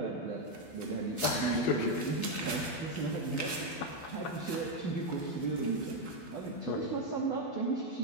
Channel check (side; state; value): right; late; 12 ms